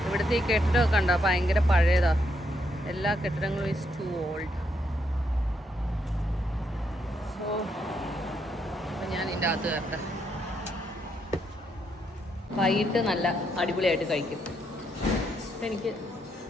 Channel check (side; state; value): both; normal; correlation 0.77